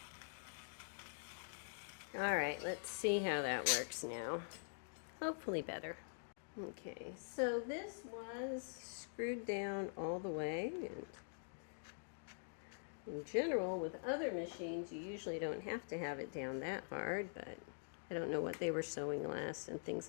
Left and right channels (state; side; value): silent; right; digital silence